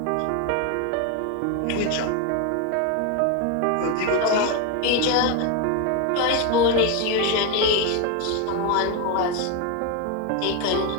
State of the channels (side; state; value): both; different; correlation 0.02